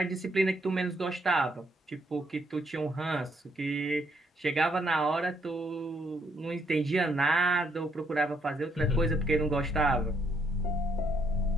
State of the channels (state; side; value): normal; both; correlation 0.72